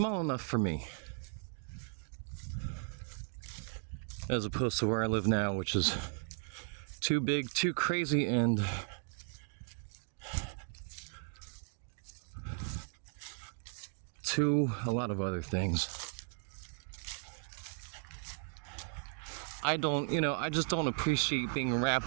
enough for me. As opposed to where I live now, which is too big, too crazy, and a lot of other things. I just don't appreciate being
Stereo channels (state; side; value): silent; left; 53 dB below the other